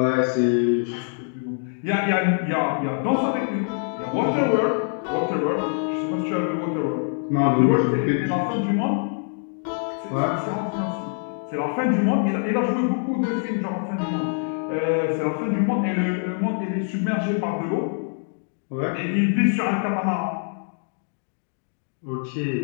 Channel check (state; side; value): silent; right; 62 dB below the other